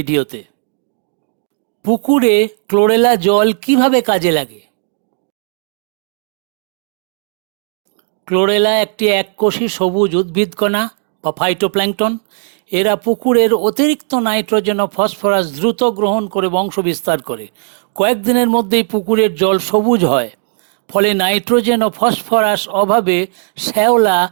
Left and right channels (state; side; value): silent; left; digital silence